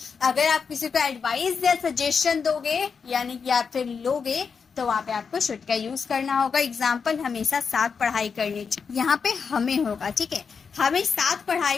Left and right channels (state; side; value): quieter; right; 5.8 dB